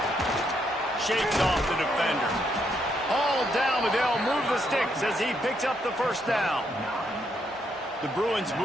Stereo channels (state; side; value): normal; both; correlation 0.76